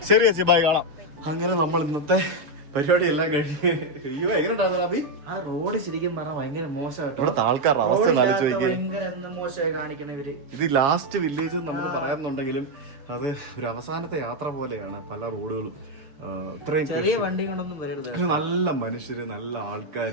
ശരി ചേച്ചി, ബൈ, കാണാം. അങ്ങനെ നമ്മൾ ഇന്നത്തെ പരിപാടി എല്ലാം കഴിഞ്ഞ്. അയ്യോ, എങ്ങനെ ഉണ്ടായിരുന്നു? ആ റോഡ് ശരിക്കും പറഞ്ഞാൽ ഭയങ്കര മോശമായിട്ടോ. ഇവിടുത്തെ ആൾക്കാരുടെ അവസ്ഥ ഭയങ്കര മോശമായി കാണിക്കണ ഇവര്. ഇത് ലാസ്റ്റ് വില്ലേജ് നമുക്ക് പറയാമെന്നുണ്ടെങ്കിലും അത് ഒരു അവസാനത്തെ യാത്ര പോലെയാണ്. പല റോഡുകളും ഇത്രയും ചെറിയ വണ്ടി കൊണ്ടൊന്നും വരരുത്. നല്ല മനുഷ്യര്, നല്ല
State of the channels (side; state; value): left; late; 6.9 ms